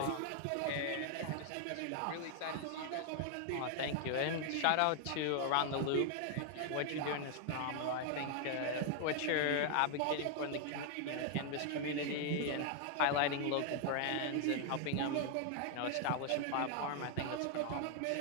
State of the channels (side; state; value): both; different; correlation 0.00